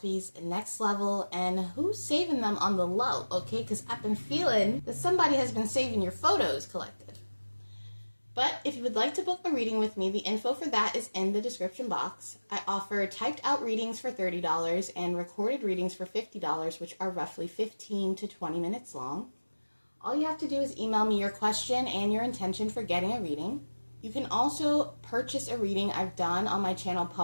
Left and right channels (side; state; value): both; inverted; correlation -1.00